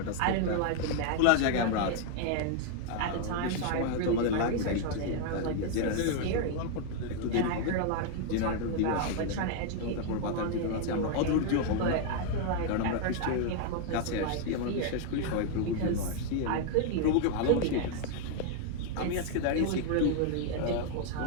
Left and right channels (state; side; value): different; both; correlation 0.00